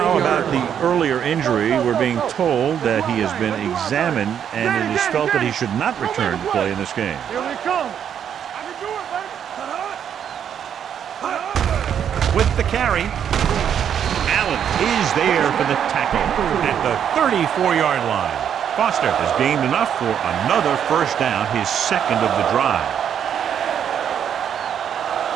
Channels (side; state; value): left; quieter; 8.8 dB